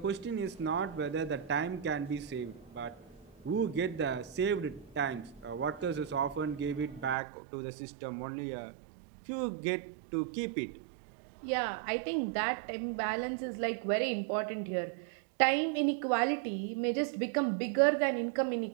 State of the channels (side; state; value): left; drops out; at 7.2 s